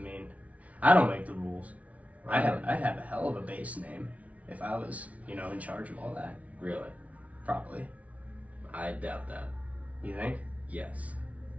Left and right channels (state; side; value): late; left; 0.067 ms